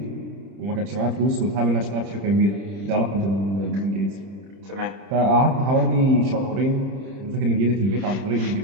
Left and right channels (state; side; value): late; left; 30 ms